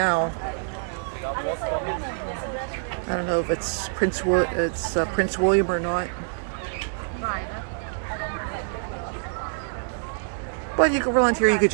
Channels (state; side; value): silent; left; digital silence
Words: I don't know if it's Prince William or not. But you can around here, you could